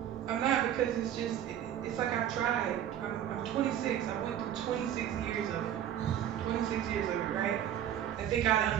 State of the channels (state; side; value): quieter; left; 10.5 dB